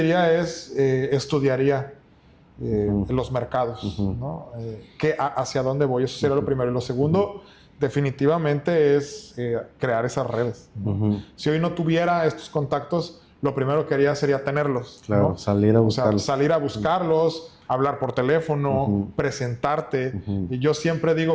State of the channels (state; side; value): identical; both; correlation 1.00